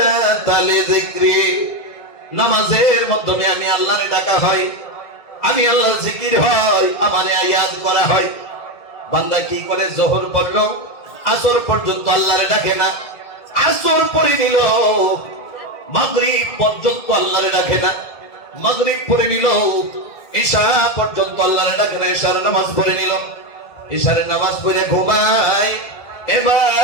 লিযিকরি, নামাজের মাধ্যমে আমি আল্লাহরে ডাকা হয়, আমি আল্লাহর জিকির হয়, আমারে ইয়াদ করা হয়। বান্দা কি করে? যোহর পড়লো, আসর পর্যন্ত আল্লাহরে ডাকে না, আসর পড়ে নিল, মাগরিব পর্যন্ত আল্লাহরে ডাকে না, মাগরিব পড়ে নিল, ইশা পর্যন্ত আল্লাহরে ডাকে না, ইশার নামাজ পড়ে নিল, ইশারের নামাজ পড়ে ঘুমায়।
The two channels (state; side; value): late; right; 2.0 ms